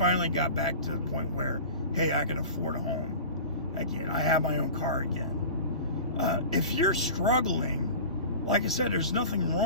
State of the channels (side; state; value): both; inverted; correlation -0.36